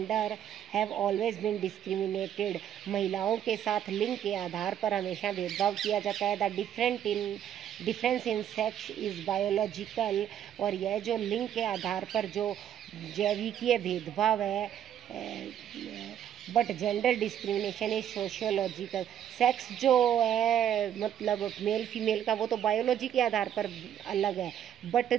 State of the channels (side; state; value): left; quieter; 10.1 dB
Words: have always been discriminated, महिलाओं के साथ लिंग के आधार पर हमेशा भेदभाव किया जाता है। The difference in sex is biological, और यह जो लिंग के आधार पर जो जैविकीय भेदभाव है, but gender discrimination is sociological, sex जो है मेल फीमेल का वो तो बायोलॉजी के आधार पर अलग है, बट